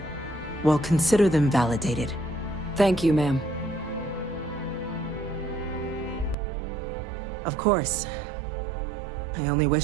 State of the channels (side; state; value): left; drops out; at 6.4 s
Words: well, consider them validated. Thank you, ma'am. Of course. I only